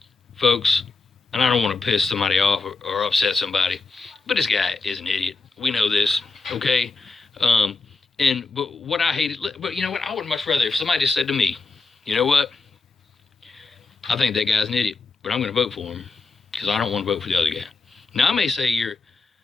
folks, and I don't want to piss somebody off or upset somebody, but this guy is an idiot. We know this, okay? But what I hated, but you know what? I would much rather if somebody just said to me, you know what? I think that guy's an idiot, but I'm going to vote for him because I don't want to vote for the other guy. Now, I may say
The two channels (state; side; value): quieter; right; 4.0 dB